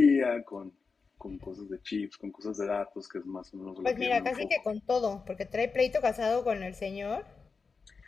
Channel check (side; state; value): right; quieter; 4.8 dB